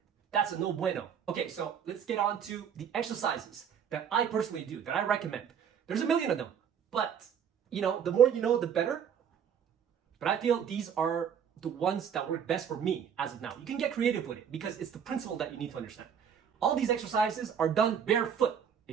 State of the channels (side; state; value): left; quieter; 7.9 dB